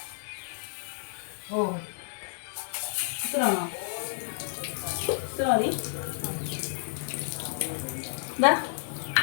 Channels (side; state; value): right; silent; digital silence